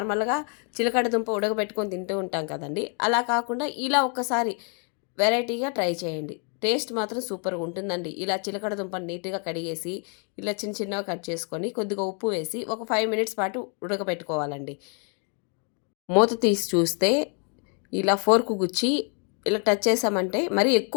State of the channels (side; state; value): right; quieter; 39.3 dB